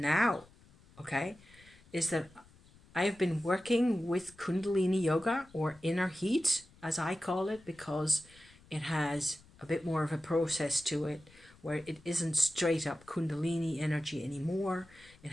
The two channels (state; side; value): noise; left; rumble, 26 dB below the sound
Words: okay, is that I have been working with Kundalini Yoga, or inner heat, as I call it, because it has a bit more of a process to it, where it isn't straight up Kundalini energy anymore. It